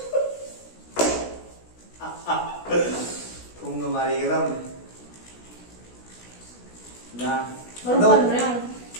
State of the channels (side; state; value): right; late; 16 ms